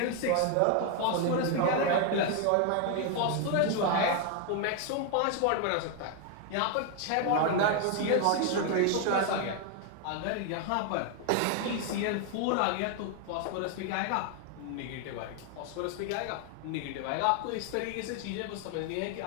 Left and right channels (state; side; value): different; both; correlation 0.01